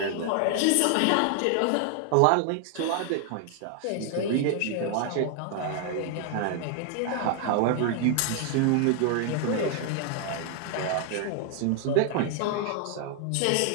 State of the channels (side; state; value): both; different; correlation 0.00